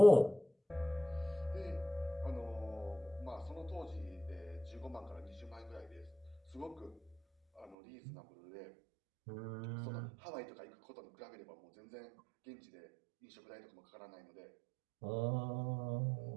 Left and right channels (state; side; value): drops out; left; at 7.8 s